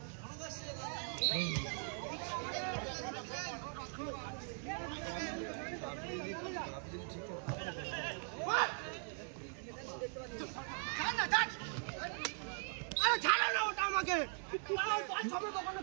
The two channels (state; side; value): silent; left; 51 dB below the other